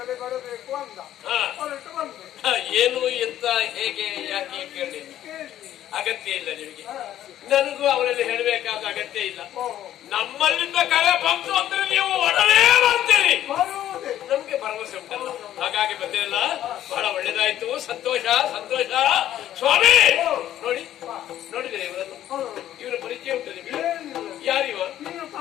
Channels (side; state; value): right; quieter; 12.1 dB